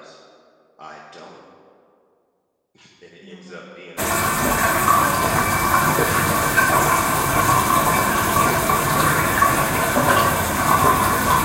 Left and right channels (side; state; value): both; identical; correlation 1.00